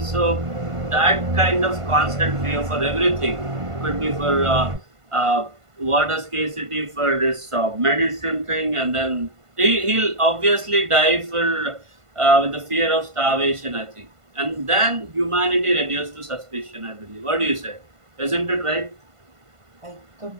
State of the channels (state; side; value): late; left; 1.5 ms